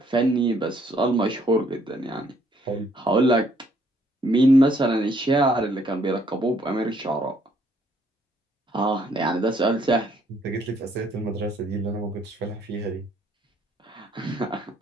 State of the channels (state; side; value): normal; both; correlation 0.66